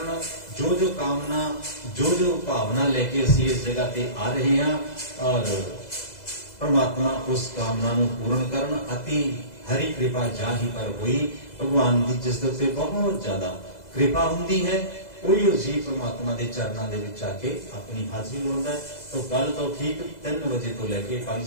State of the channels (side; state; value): right; late; 2.0 ms